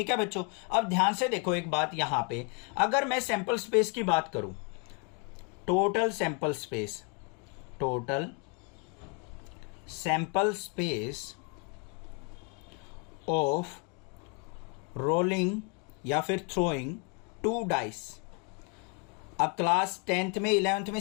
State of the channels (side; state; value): right; quieter; 32.3 dB